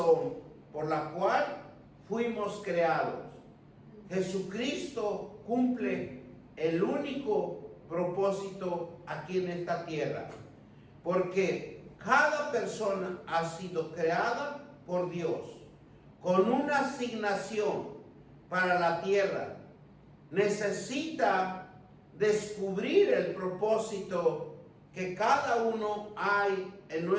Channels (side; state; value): both; identical; correlation 1.00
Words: por la cual fuimos creados. Jesucristo cumple el único propósito aquí en esta tierra, porque cada persona ha sido creada por Dios con una asignación para la tierra. Necesita descubrir el propósito que cada uno hay en